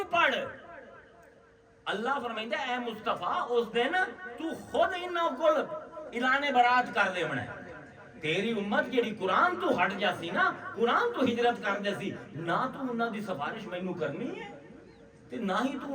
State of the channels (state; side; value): identical; both; correlation 1.00